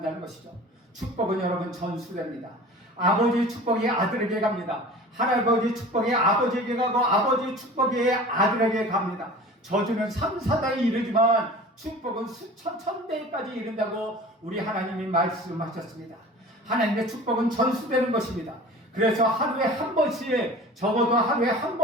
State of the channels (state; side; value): normal; both; correlation 0.41